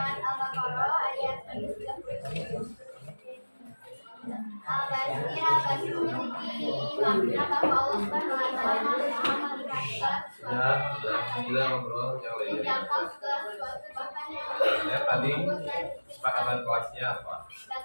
Al-Baqarah ayat 30. Al-Basir memiliki makna bahwa Allah Subhanahu wa Ta'ala Maha melihat segala sesuatu Sudah ngobrol yang lainnya. menjangkau segala sesuatu bahkan yang Ya, tadi kesepakatan kelasnya apa?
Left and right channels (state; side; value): inverted; both; correlation -1.00